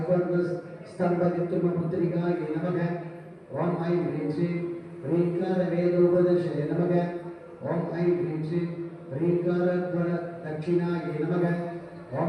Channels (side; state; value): both; identical; correlation 1.00